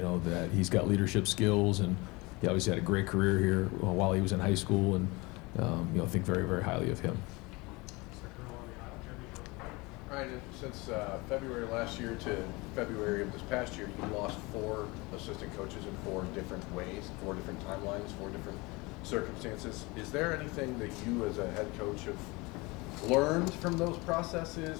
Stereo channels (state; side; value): quieter; right; 24.7 dB